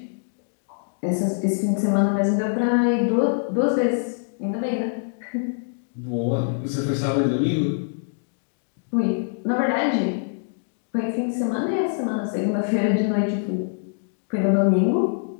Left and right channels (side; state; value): right; silent; digital silence